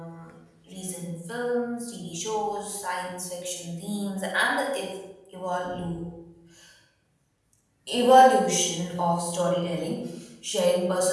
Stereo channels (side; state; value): both; identical; correlation 1.00